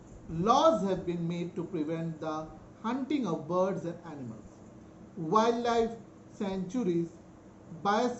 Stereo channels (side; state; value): both; identical; correlation 1.00